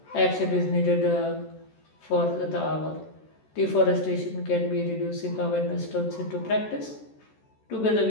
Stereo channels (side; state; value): right; late; 14 ms